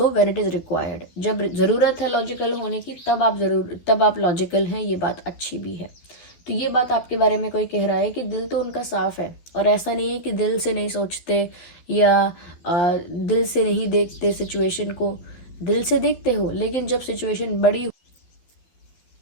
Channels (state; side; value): late; right; 12 ms